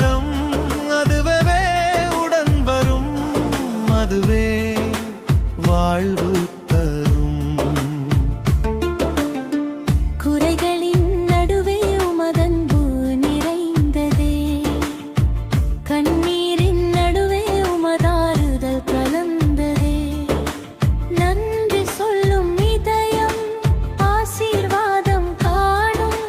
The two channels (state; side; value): identical; both; correlation 1.00